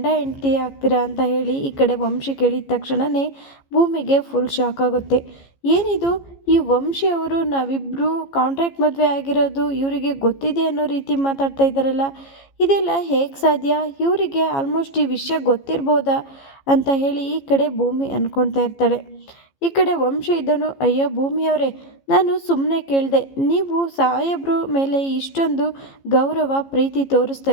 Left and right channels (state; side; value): late; right; 15 ms